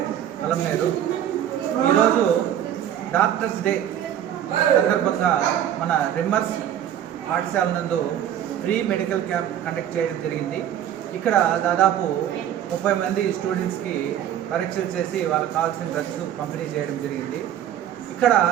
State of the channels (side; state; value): left; quieter; 10.6 dB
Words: అలంనేరు. ఈరోజు డాక్టర్స్ డే సందర్భంగా మన రిమ్మర్స్ పాఠశాల నందు ఫ్రీ మెడికల్ క్యాంప్ కండక్ట్ చేయడం జరిగింది. ఇక్కడ దాదాపు 30 మంది స్టూడెంట్స్కి పరీక్షలు చేసి వాళ్ళకి కావాల్సిన డ్రగ్స్ పంపిణీ చేయడం జరిగింది. ఇక్కడ